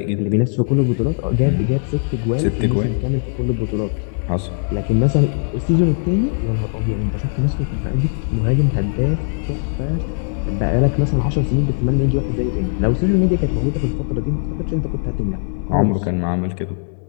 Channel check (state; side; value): silent; right; 66 dB below the other